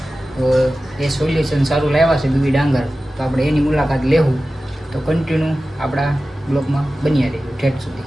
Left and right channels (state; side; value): normal; both; correlation 0.95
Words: તો એ સોલ્યુશન સારું લાવ્યા છે બીબી ડાંગર, તો આપણે એની મુલાકાત લેવું. તો કન્ટિન્યુ આપણા બ્લોગમાં બન્યા રહીશું ઠેઠ સુધી.